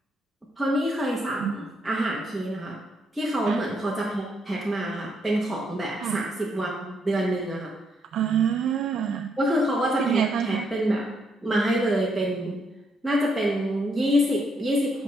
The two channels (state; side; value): normal; both; correlation 0.75